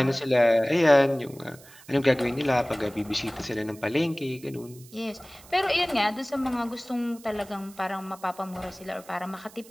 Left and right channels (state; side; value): noise; right; hiss, 22 dB below the sound